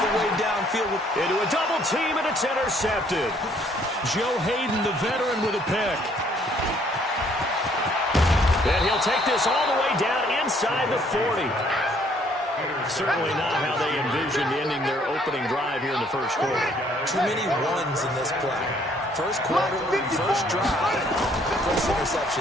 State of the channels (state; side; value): normal; both; correlation 0.64